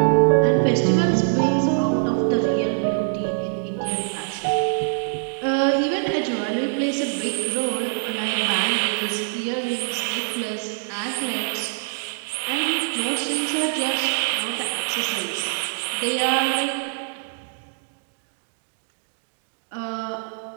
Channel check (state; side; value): silent; left; digital silence